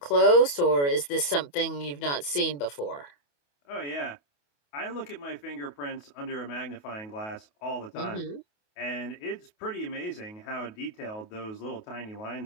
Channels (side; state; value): right; late; 28 ms